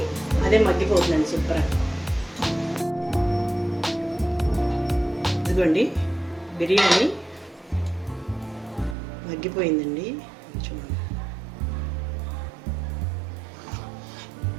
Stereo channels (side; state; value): left; drops out; at 9.0 s